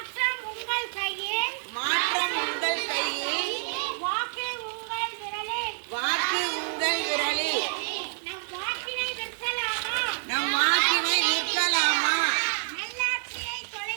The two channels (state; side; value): silent; left; digital silence